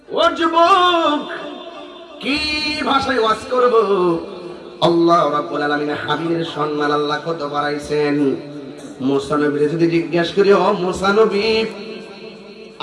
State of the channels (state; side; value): identical; both; correlation 1.00